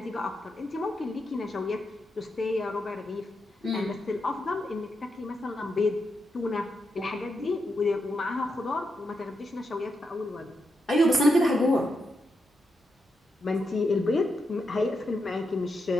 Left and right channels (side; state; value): both; normal; correlation 0.84